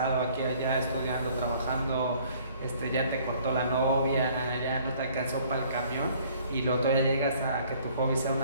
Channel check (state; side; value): inverted; both; correlation -0.58